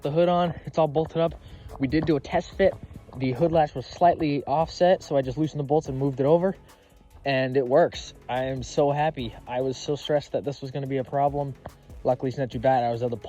the hood on. It's all bolted up. We did do a test fit. The hood latch was slightly offset, so I just loosened the bolts and moved it over, and it works. I am so happy. I was so stressed that this was going to be a problem. Luckily, it's not too bad. I was able to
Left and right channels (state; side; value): identical; both; correlation 1.00